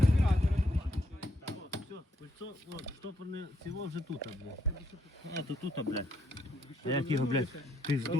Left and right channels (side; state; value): both; normal; correlation 0.74